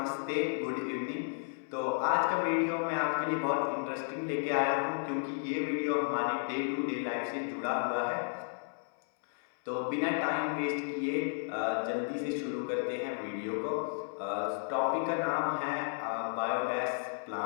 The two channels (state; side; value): silent; right; 56 dB below the other